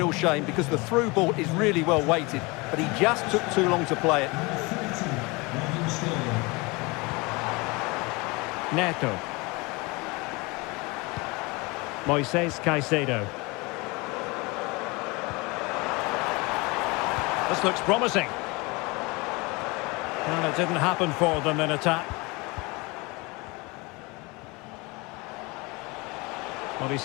shame because the through ball is really well weighted, but he just took too long to play it. Neto. Moises Caicedo. This looks promising. And it didn't happen for them in attack. Well, he's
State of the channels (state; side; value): quieter; right; 25.8 dB